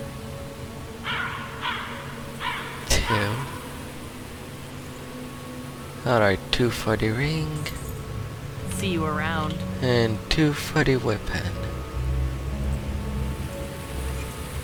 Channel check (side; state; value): both; identical; correlation 1.00